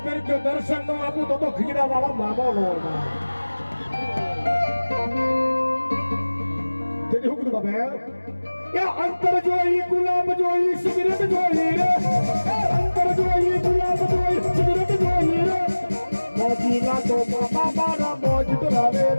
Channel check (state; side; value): inverted; both; correlation -1.00